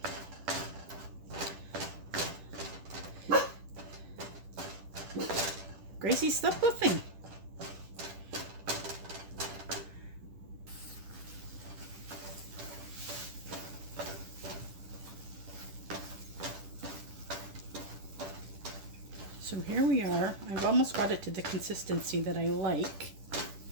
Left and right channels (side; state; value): left; late; 10 ms